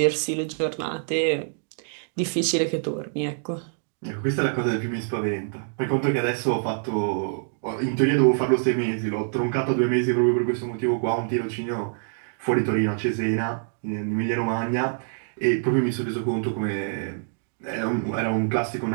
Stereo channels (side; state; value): left; silent; digital silence